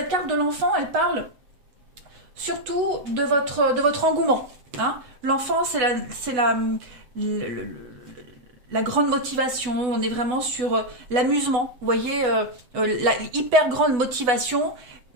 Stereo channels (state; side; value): late; left; 8.1 ms